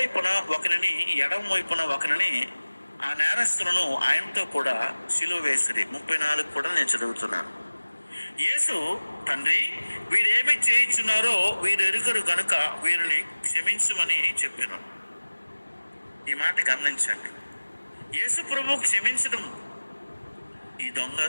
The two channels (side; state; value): both; inverted; correlation -1.00